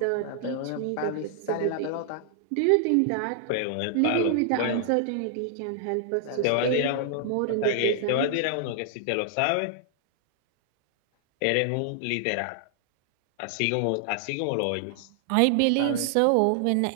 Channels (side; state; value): both; different; correlation 0.00